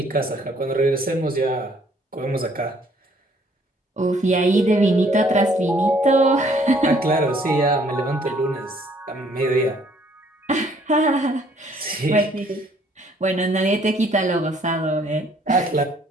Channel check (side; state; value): both; normal; correlation 0.62